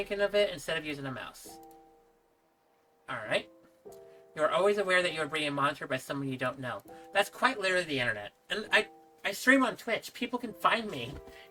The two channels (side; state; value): both; identical; correlation 1.00